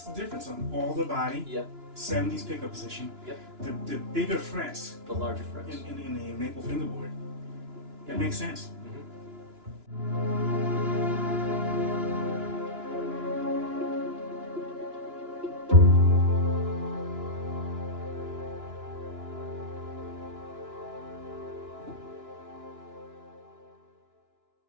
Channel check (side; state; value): left; late; 2.9 ms